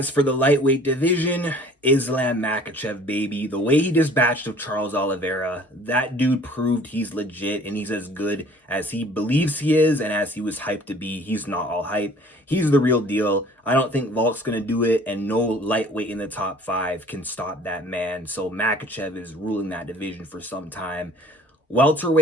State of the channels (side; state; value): both; normal; correlation 0.52